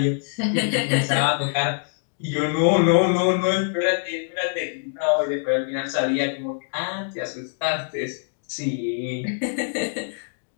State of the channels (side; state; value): right; silent; digital silence